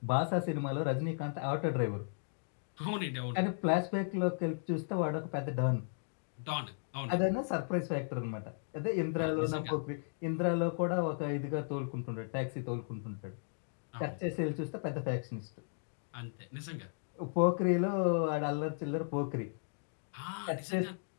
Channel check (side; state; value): right; silent; digital silence